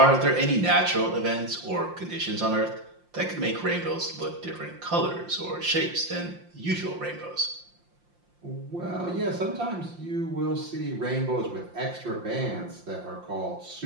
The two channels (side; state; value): left; late; 5.7 ms